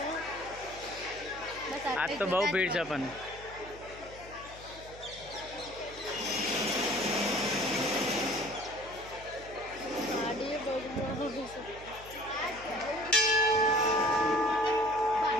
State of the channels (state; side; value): noise; left; hum, 18 dB below the sound